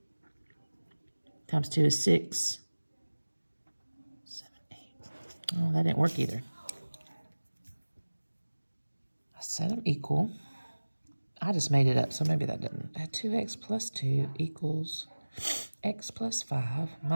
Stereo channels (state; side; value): inverted; both; correlation -1.00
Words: times 2 is 6. 7, 8. Oh, that didn't work either. I set them equal. I just made it up, so maybe that didn't. 2x plus 2 equals x plus 5